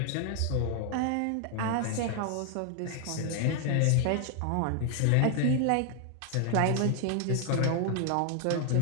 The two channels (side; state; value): both; different; correlation 0.00